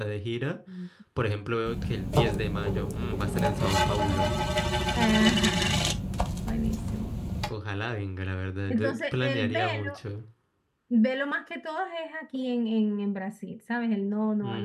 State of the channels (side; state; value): both; identical; correlation 1.00